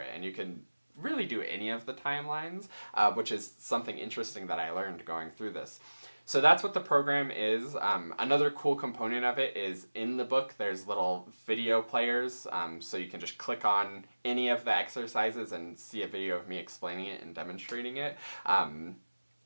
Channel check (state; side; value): inverted; both; correlation -1.00